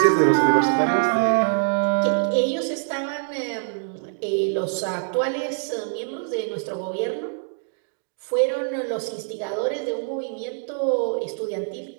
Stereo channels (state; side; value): silent; left; digital silence